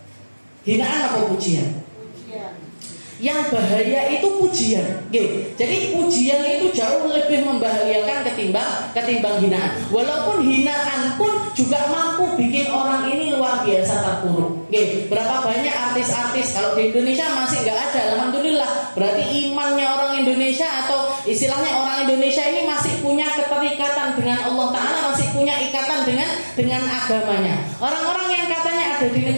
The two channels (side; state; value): both; inverted; correlation -1.00